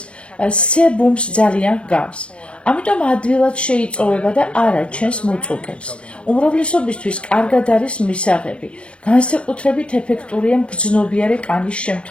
სებუმს ძალიან გავს. ამიტომ ადვილად შეიწოვება და არ აჩენს მუწუკებს. უმრავლესობისთვის კარგად არის მისაღები. განსაკუთრებით ეფექტურია მგრძნობიარე კანის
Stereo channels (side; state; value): right; late; 0.058 ms